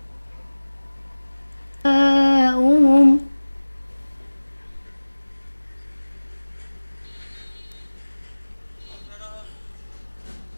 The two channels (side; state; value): both; inverted; correlation -1.00